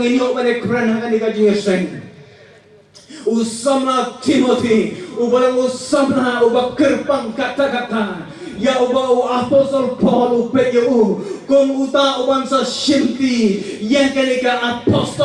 inyo mane kran ha kanika jingeseng usama Timothy ubalang usama ubakirpang kata-kata ya uba apostol Paul upeyo kung uta uban sa shimti yang kanika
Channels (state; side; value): identical; both; correlation 1.00